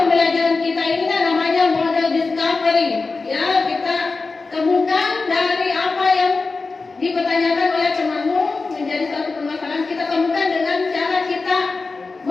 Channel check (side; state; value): right; quieter; 4.0 dB